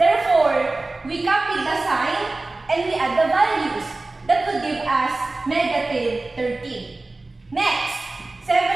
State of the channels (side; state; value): left; quieter; 3.1 dB